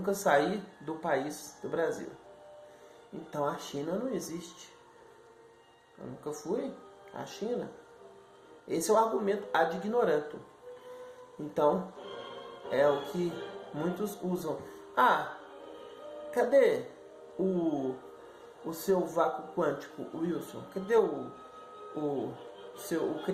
saí do país do Brasil. Então a China não existe. Eu nunca fui à China. Esse é o argumento ad ignorantum. Então, é o que muitos usam. Cadê o seu vácuo quântico, Wilson? Cadê o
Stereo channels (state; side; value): identical; both; correlation 1.00